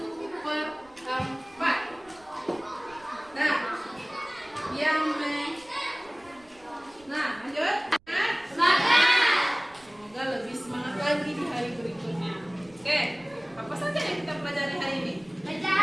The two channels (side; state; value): right; noise; rumble, 28 dB below the sound